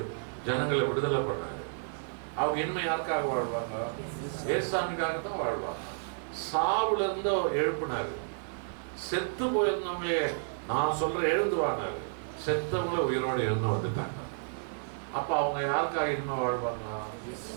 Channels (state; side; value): silent; left; 57 dB below the other